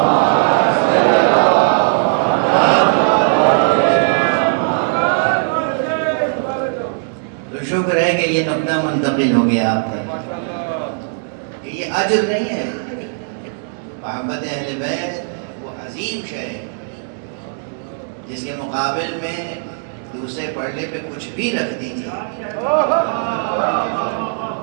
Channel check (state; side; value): silent; left; digital silence